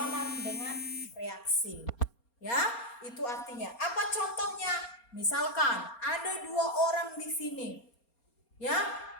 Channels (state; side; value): late; right; 4.3 ms